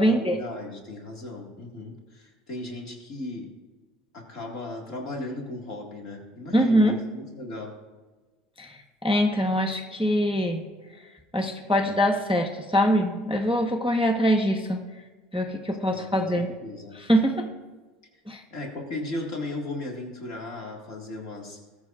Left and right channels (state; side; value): normal; both; correlation 0.70